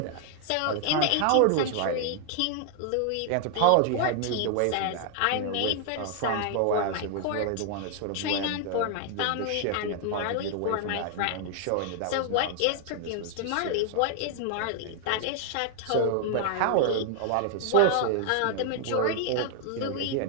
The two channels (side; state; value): both; different; correlation 0.00